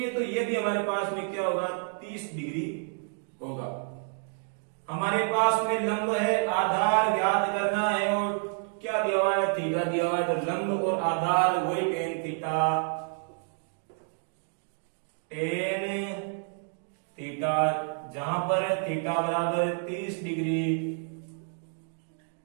तो ये भी हमारे पास में क्या होगा? 30 डिग्री होगा। हमारे पास में लंब है, आधार ज्ञात करना है और क्या दिया हुआ है? थीटा दिया हुआ है। तो लंब और आधार वही टेन थीटा, टेन थीटा, जहां पर थीटा बराबर 30 डिग्री,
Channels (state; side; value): silent; left; 55 dB below the other